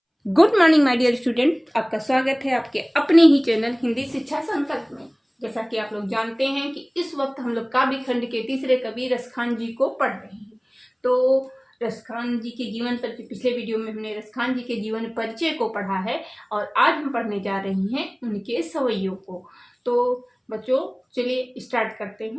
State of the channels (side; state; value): both; identical; correlation 1.00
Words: Good morning my dear student, आपका स्वागत है आपके अपने ही चैनल हिंदी शिक्षा संकल्प में। जैसा कि आप लोग जानते हैं कि इस वक्त हम लोग काव्य खंड के तीसरे कवि रसखान जी को पढ़ रहे हैं। तो रसखान जी के जीवन पर पिछले वीडियो में हमने रसखान जी के जीवन परिचय को पढ़ा है और आज हम पढ़ने जा रहे हैं उनके सवैयों को। तो बच्चों चलिए स्टार्ट करते